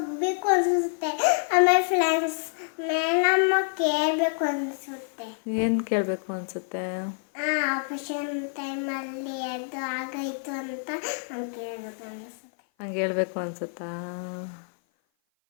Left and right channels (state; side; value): silent; right; 56 dB below the other